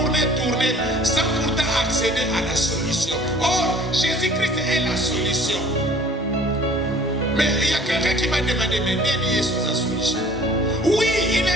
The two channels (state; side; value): normal; both; correlation 0.50